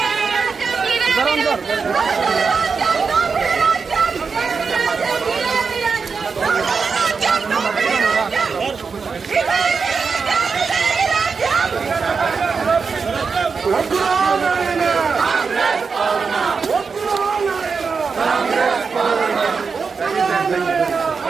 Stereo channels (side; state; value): left; quieter; 5.2 dB